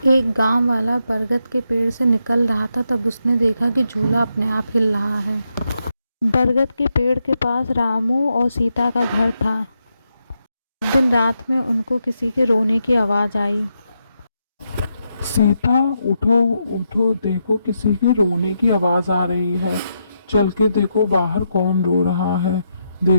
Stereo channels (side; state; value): both; inverted; correlation -0.83